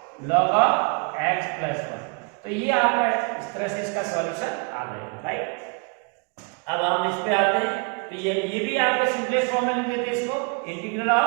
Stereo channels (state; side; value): quieter; left; 34.3 dB